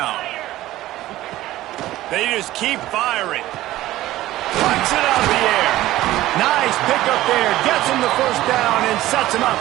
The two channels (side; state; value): left; quieter; 15.6 dB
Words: They just keep firing. Flicks it out of the air. Nice pickup there. Gets him the first down and sets him